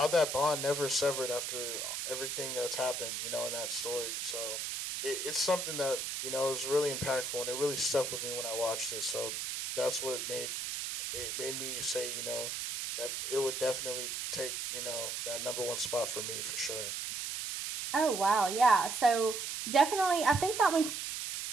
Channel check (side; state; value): right; noise; hiss, 4 dB below the sound